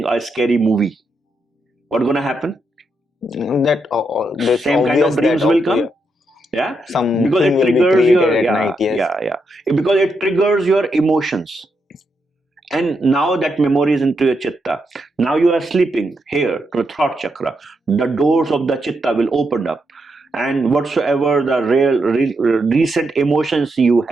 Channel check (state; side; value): normal; both; correlation 0.82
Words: a scary movie, what's going to happen? That same kind of dreams will come. Because it triggers your because it triggers your emotions. And now that memory is into your chitta. Now you are sleeping here to the throat chakra. The doors of the chitta will open up. And whatsoever the recent emotions you